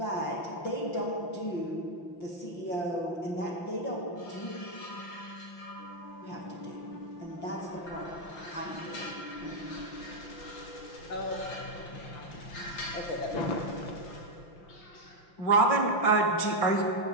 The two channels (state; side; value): late; right; 5.9 ms